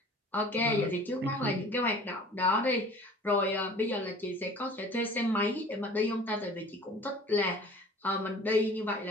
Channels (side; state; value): both; normal; correlation 0.46